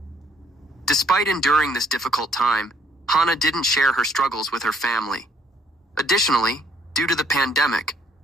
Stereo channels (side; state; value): both; normal; correlation 0.66